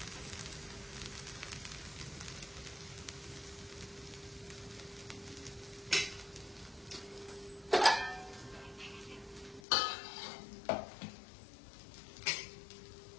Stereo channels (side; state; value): right; drops out; at 9.6 s